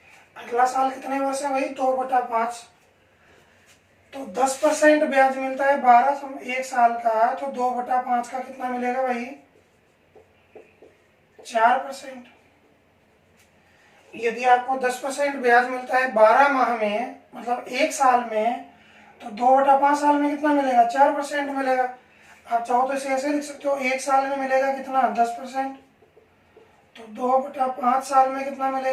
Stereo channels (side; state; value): both; identical; correlation 1.00